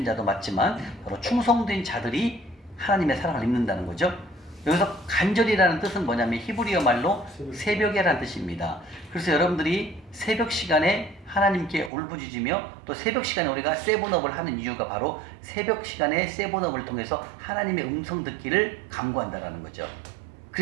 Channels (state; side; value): drops out; left; at 11.9 s